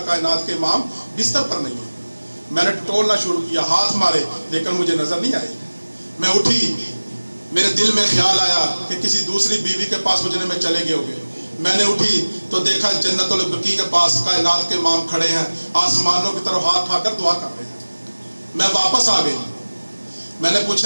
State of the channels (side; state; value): both; inverted; correlation -1.00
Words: कायनात के इमाम बिस्तर पर नहीं है। मैंने टटोलना शुरू किया, हाथ मारे, लेकिन मुझे नजर नहीं आई। मैं उठी, मेरे दिल में ख्याल आया कि किसी दूसरी बीवी के पास गुजरने में चले गए होंगे। मैंने उठी तो देखा जन्नतुल बकी के पास कायनात के इमाम खड़े हैं, आसमानों की तरफ हाथ उठाकर दुआ कर रहे हैं। मैं वापस आ गई। मैंने